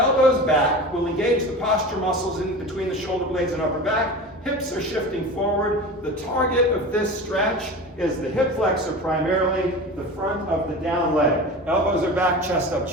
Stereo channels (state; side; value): normal; both; correlation 0.32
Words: back. We'll engage the posture muscles in between the shoulder blades and upper back. Hips are shifting forward. The target of this stretch is the hip flexor primarily, the front of the down leg. Elbows are back, chest up,